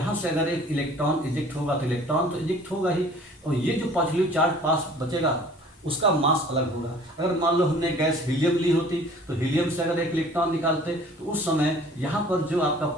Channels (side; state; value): both; normal; correlation 0.50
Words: से अगर एक इलेक्ट्रॉन इजेक्ट होगा तो इलेक्ट्रॉन तो इजेक्ट होगा ही, और ये जो पॉजिटिव चार्ज पास बचेगा उसका मास अलग होगा। अगर मान लो हमने गैस हीलियम ली होती तो हीलियम से अगर एक इलेक्ट्रॉन निकालते तो उस समय यहाँ पर जो आपका